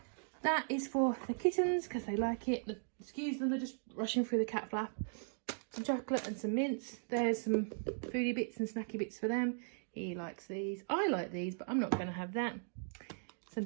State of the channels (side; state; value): left; silent; digital silence